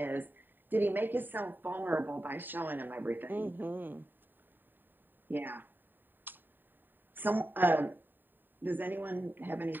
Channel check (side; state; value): left; late; 0.092 ms